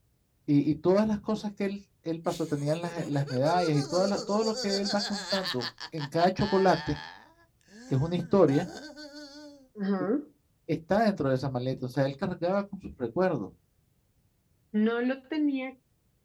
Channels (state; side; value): identical; both; correlation 1.00